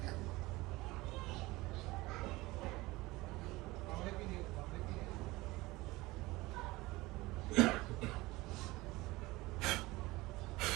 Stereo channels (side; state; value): left; quieter; 20.6 dB